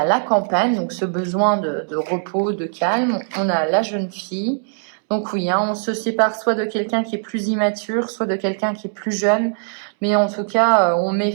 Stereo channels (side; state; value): left; silent; 65 dB below the other